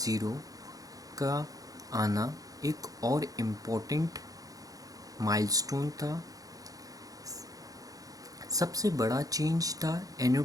का आना एक और इम्पोर्टेंट माइलस्टोन था। सबसे बड़ा चेंज था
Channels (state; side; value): late; left; 0.17 ms